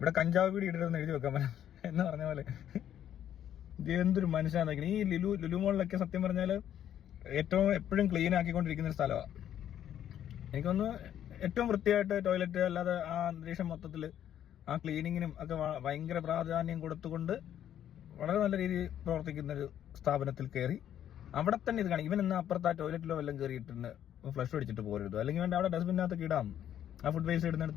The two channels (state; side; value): quieter; right; 10.5 dB